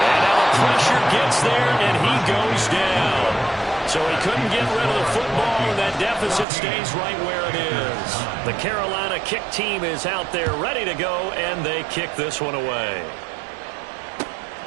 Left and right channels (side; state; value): left; drops out; at 6.5 s